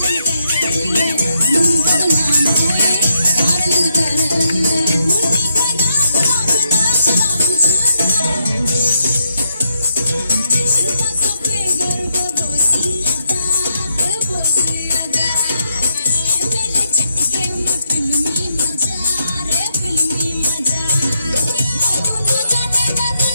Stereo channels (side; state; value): both; inverted; correlation -0.79